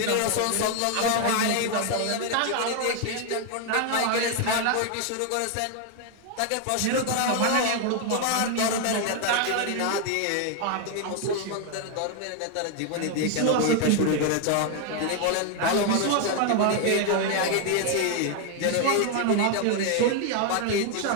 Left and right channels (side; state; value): both; different; correlation 0.00